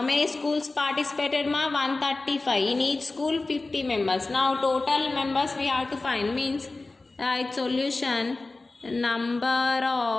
many schools participated ma? 135. In each school 50 members. Now total members we have to find. Means right solution, number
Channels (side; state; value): right; quieter; 3.3 dB